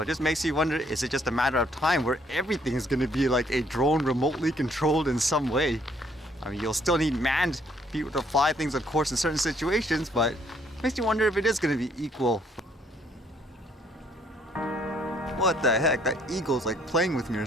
it just makes you wonder, is it just a matter of time where everything is going to be like a drone remotely controlled in some way? I mean, you'll still need manned people to fly things, of course, in certain situations, but it makes you wonder if it is going to be equal. What the heck? That eagle's like playing with me or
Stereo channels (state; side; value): normal; both; correlation 0.65